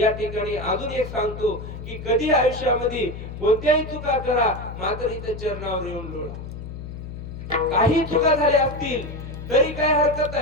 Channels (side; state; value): left; noise; hum, 10 dB below the sound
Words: ठिकाणी अजून एक सांगतो की कधी आयुष्यामध्ये कोणत्याही चुका करा मात्र इथे चरणावर येऊन लोळा. काही चुका झाल्या असतील तरी काय हरकत